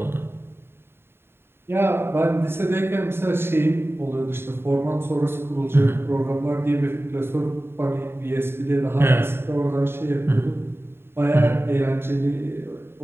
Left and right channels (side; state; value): left; late; 0.11 ms